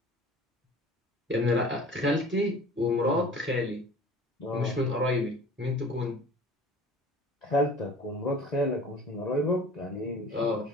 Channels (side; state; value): both; normal; correlation 0.44